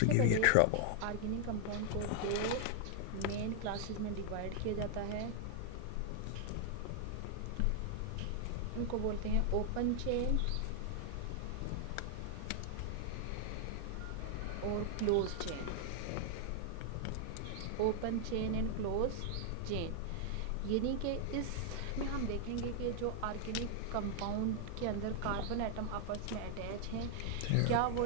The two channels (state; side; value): different; both; correlation 0.00